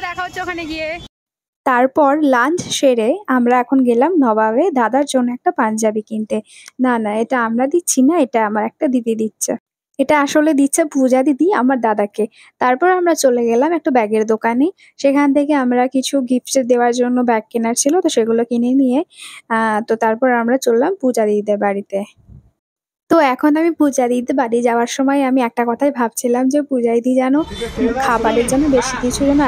দেখা হচ্ছে ওখানে গিয়ে। তারপর লাঞ্চ সেরে আমরা এখন গেলাম নবাবে দাদার জন্য একটা পাঞ্জাবি কিনতে। না না, এটা আমরা দিচ্ছি না, এটা আমার একটা দিদি দিচ্ছে। এটা আসলে দিচ্ছে পূজা দিদি আমার দাদাকে। তারপর আমরা চলে গেলাম একটা ব্যাগের দোকানে। সেখান থেকে আমরা কিছু গিফট দেওয়ার জন্য ব্যাগ কেনার ছিল, তো সেগুলো কিনে নিয়ে তো তারপর আমরা চললাম পূজা দিদিদের বাড়িতে। তো এখন আমি পূজা দিদিদের বাড়ি যাওয়ার সময় আমি একটা কথাই ভাবছিলাম যে পূজা দিদি যেন খাবারের জন্য বেশি কিছু যেন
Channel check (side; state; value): both; identical; correlation 1.00